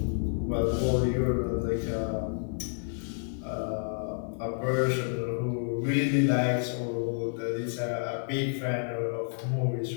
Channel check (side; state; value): right; silent; 58 dB below the other